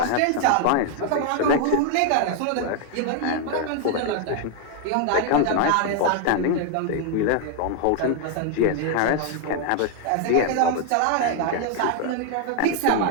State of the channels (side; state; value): both; different; correlation 0.00